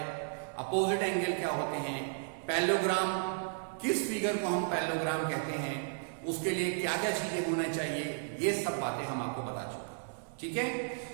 अपोजिट एंगल क्या होते हैं, पैरेललोग्राम किस फिगर को हम पैरेललोग्राम कहते हैं, उसके लिए क्या क्या चीजें होना चाहिए, ये सब बातें हम आपको बता चुके हैं. ठीक है.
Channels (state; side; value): silent; left; digital silence